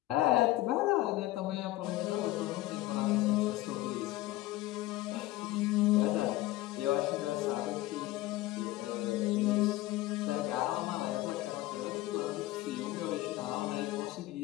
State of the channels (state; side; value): quieter; right; 17.1 dB